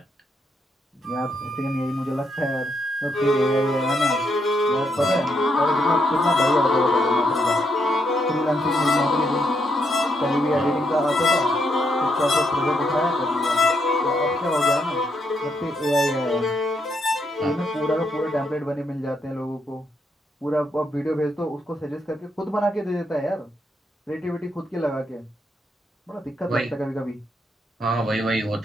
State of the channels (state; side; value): normal; both; correlation 0.78